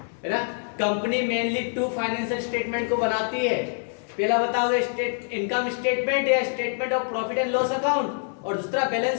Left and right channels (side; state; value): right; silent; 59 dB below the other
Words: है ना, कंपनी मेनली 2 फाइनेंशियल स्टेटमेंट को बनाती है। पहला बताओगे स्टेट इनकम स्टेटमेंट या statement of profit and loss account, और दूसरा बैलेंस